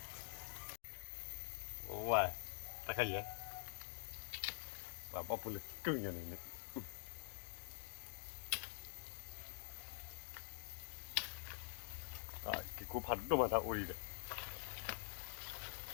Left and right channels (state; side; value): silent; right; digital silence